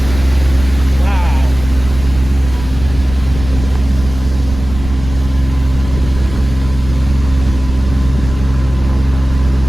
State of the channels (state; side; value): noise; right; rumble, 10 dB below the sound